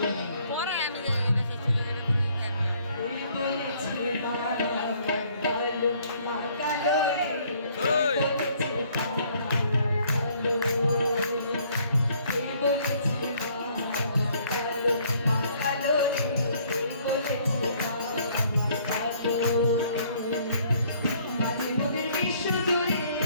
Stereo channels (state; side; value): inverted; both; correlation -0.62